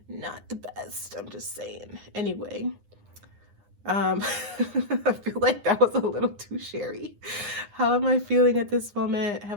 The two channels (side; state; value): left; late; 9.8 ms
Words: not the best. I'm just saying. Anyway, I feel like that was a little too sherry. How am I feeling at this moment?